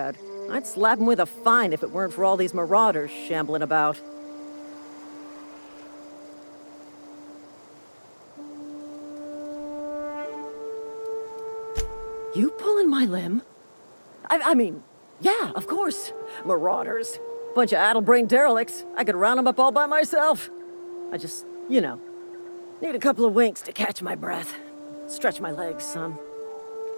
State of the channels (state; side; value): inverted; both; correlation -1.00